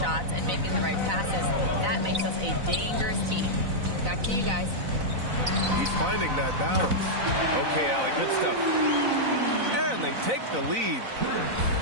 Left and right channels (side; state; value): left; late; 4.0 ms